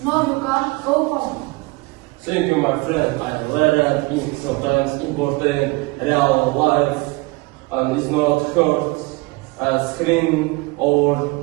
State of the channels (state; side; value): quieter; left; 24.9 dB